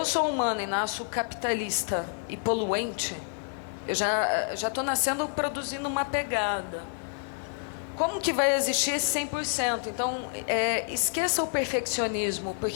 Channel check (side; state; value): right; silent; 58 dB below the other